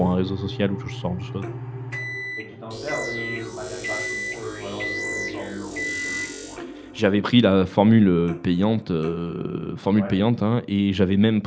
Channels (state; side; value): identical; both; correlation 1.00